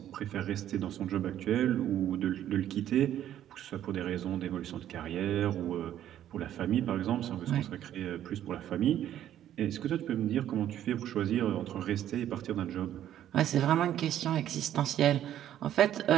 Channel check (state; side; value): quieter; left; 11.4 dB